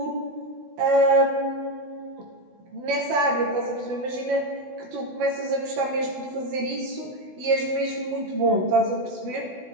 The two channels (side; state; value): left; late; 16 ms